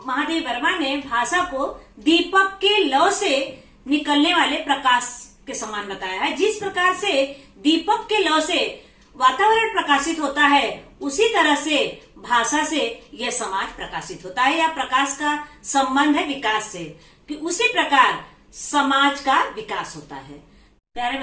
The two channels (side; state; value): both; identical; correlation 1.00